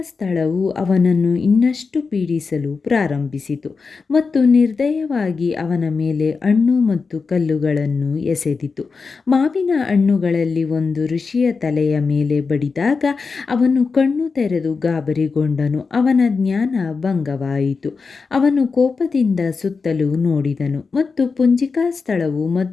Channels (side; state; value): right; quieter; 4.7 dB